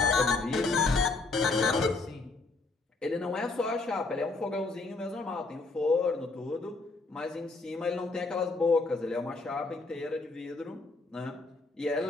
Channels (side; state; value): right; quieter; 3.6 dB